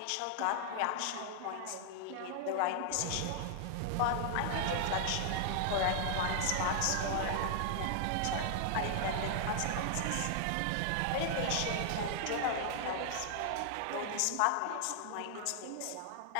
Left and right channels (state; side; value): different; both; correlation 0.00